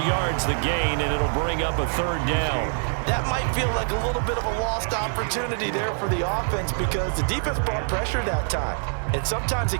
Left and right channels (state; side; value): silent; left; 62 dB below the other